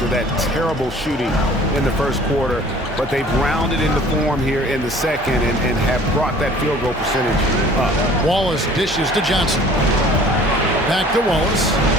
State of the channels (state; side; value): normal; both; correlation 0.50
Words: that terrible shooting in the first quarter. But they've rounded into form here in the second and have brought that field goal percentage up. Wallace dishes to Johnson. Back to Wallace.